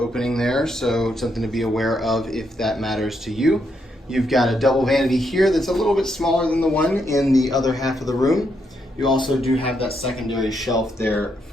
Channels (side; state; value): both; normal; correlation 0.78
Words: there. So something to be aware of if that matters to you. You've got a double vanity here that's a little bit smaller than the one in the other half of the room. You also do have that secondary shelf there